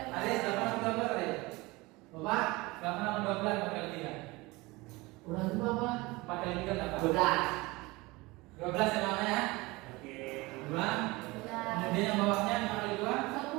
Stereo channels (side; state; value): left; quieter; 22.7 dB